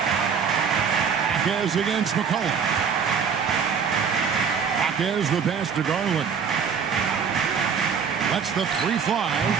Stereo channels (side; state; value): left; quieter; 6.6 dB